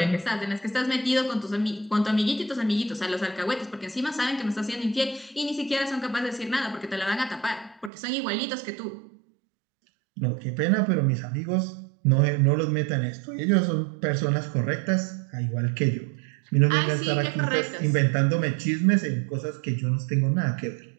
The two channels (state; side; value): drops out; left; at 7.9 s